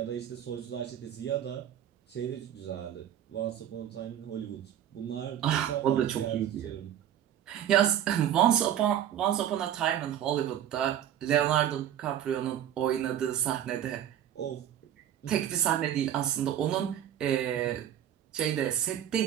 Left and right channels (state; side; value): quieter; left; 10.6 dB